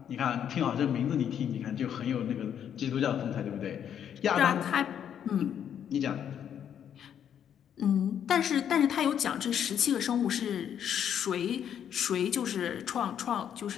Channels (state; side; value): quieter; right; 9.1 dB